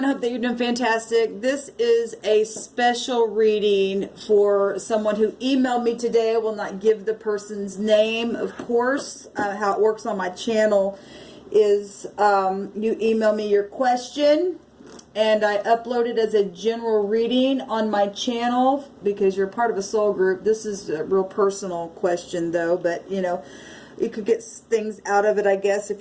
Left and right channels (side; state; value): both; identical; correlation 1.00